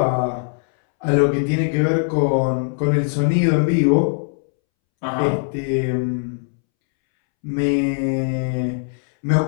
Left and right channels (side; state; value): right; silent; 66 dB below the other